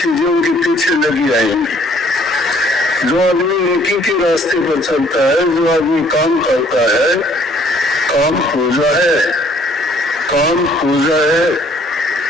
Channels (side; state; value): both; normal; correlation 0.61